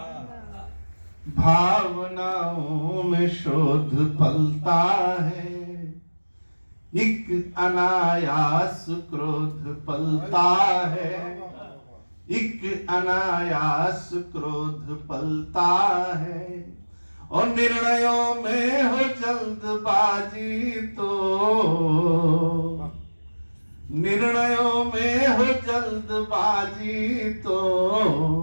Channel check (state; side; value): inverted; both; correlation -1.00